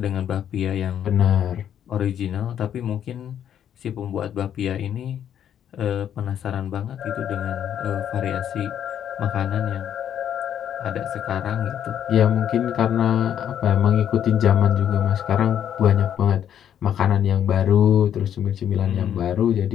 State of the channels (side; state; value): right; quieter; 9.7 dB